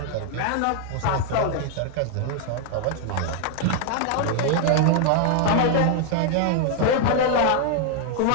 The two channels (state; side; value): different; both; correlation 0.00